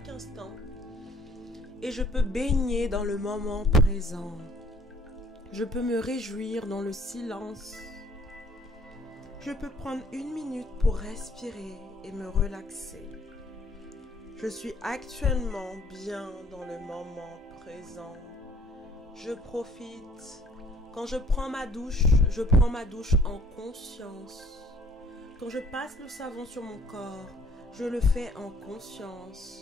instant. Et je peux baigner dans le moment présent. Je peux me réjouir dans le silence. Je peux prendre 1 minute pour respirer et me relaxer. Je suis actuellement bien dans le moment présent. Je profite. Quand je prends ma douche en conscience. Quand je passe le savon sur mon corps, je le fais en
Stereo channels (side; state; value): both; normal; correlation 0.58